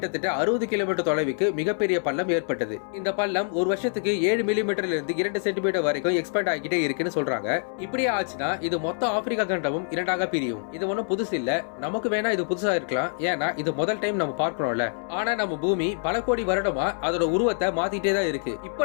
60 கிலோமீட்டர் தொலைவுக்கு மிகப்பெரிய பள்ளம் ஏற்பட்டது. இந்த பள்ளம் ஒரு வருஷத்துக்கு 7 மில்லிமீட்டர்ல இருந்து 2 சென்டிமீட்டர் வரைக்கும் எக்ஸ்பேண்ட் ஆகிட்டே இருக்குன்னு சொல்றாங்க. இப்படியே ஆச்சுன்னா இது மொத்த ஆப்பிரிக்கா கண்டமும் இரண்டாக பிரியும். இது ஒன்னும் புதுசு இல்ல, நமக்கு வேணா இது புதுசா இருக்கலாம், ஏன்னா இது முதல் டைம் நம்ம பார்க்கறோம்ல. ஆனா நம்ம பூமி பல கோடி வருடமா அதோட உருவத்தை மாத்திட்டே தான் இருக்கு. இப்போ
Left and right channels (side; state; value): right; silent; 61 dB below the other